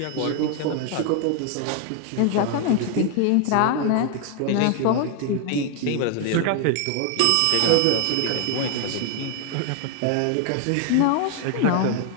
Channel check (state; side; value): different; both; correlation 0.01